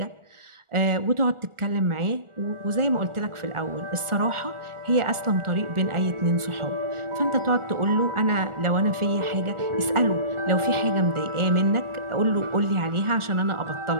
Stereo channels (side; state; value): left; late; 1.4 ms